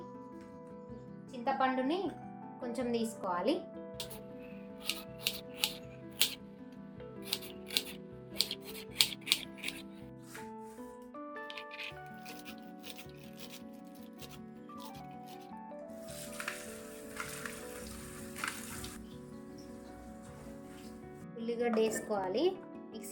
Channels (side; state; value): both; identical; correlation 1.00